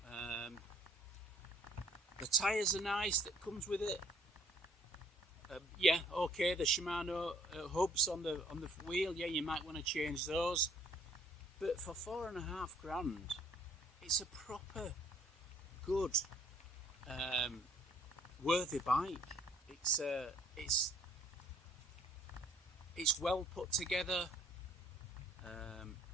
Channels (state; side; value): normal; both; correlation 0.59